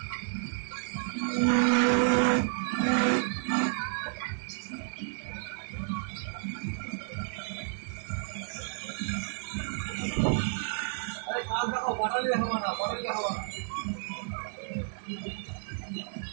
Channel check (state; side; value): silent; left; 57 dB below the other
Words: কাজ দেখো, বটালি দেখাবো না, বটালি দেখাবো না।